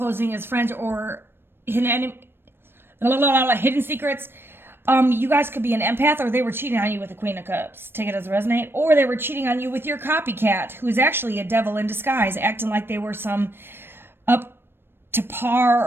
as friends, or hidden secrets. You guys could be an empath, or they were cheating on you with the Queen of Cups. Take it as a resonate. Or they were cheating on you with your copycat, who is actually a devil in disguise, acting like they were some up to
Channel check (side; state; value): left; late; 0.10 ms